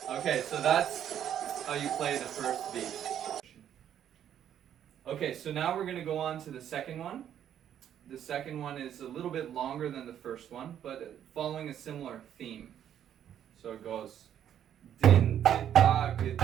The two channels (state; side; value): quieter; left; 10.0 dB